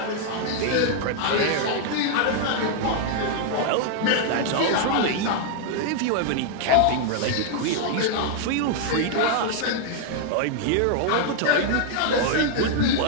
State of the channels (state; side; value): different; both; correlation 0.00